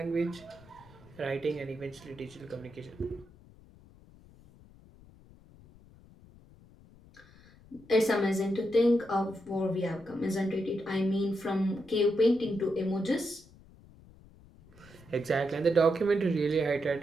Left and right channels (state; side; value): noise; left; rumble, 24 dB below the sound